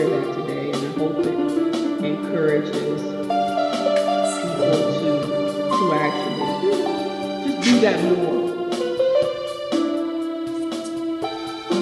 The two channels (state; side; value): identical; both; correlation 1.00